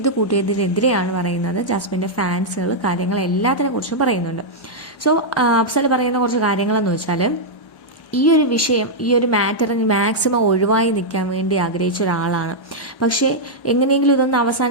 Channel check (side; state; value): right; late; 1.1 ms